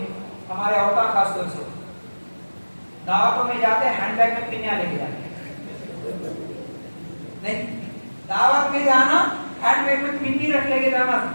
हमारे औरतें खासतौर से दावतों में जाते हैंडबैग में पिन्या लेके जाते, नहीं दावत में जाना हैंडबैग में पिन्नी रख लेके जाना,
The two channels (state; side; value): inverted; both; correlation -1.00